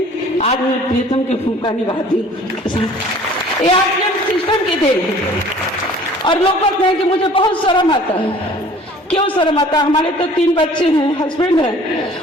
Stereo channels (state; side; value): normal; both; correlation 0.50